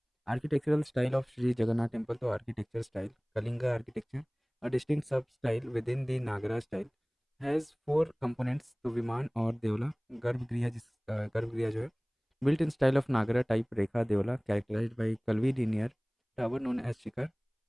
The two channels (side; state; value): both; identical; correlation 1.00